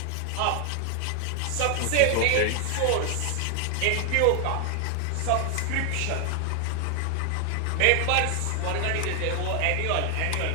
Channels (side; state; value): both; different; correlation 0.00